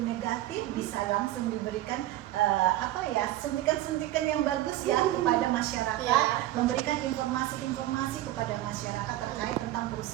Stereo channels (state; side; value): quieter; left; 14.8 dB